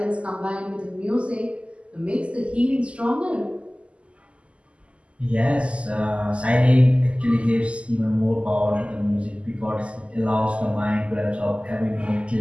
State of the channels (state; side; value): late; left; 0.057 ms